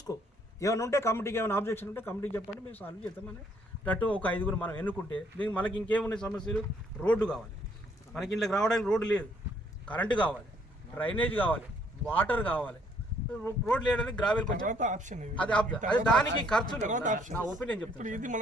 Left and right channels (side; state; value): both; normal; correlation 0.66